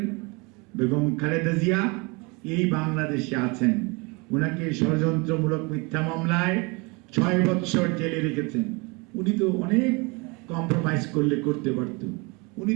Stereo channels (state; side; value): quieter; left; 28.3 dB